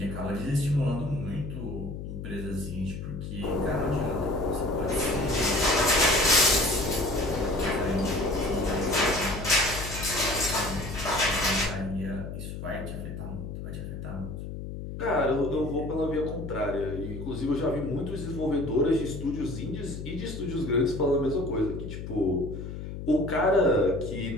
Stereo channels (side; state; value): left; noise; hum, 8 dB below the sound